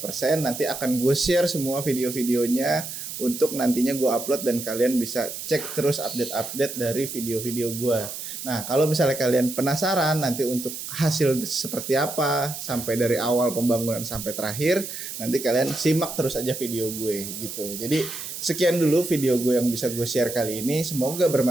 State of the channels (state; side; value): noise; right; hiss, 8 dB below the sound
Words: Nanti akan gue share semua video-videonya untuk nantinya gue upload, dan kalian bisa cek terus update-update dari video-video gue. Nah kalau misalnya kalian penasaran nanti untuk hasil seperti apa sampai dari awal pembangunan sampai terakhir, nanti kalian simak terus aja video gue gitu. Jadi sekian dulu video gue yang bisa gue share kali ini, semoga